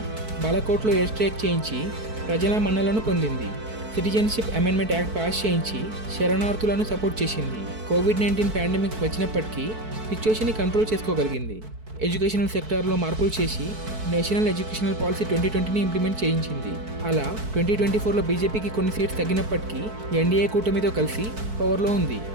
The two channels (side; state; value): left; late; 4.6 ms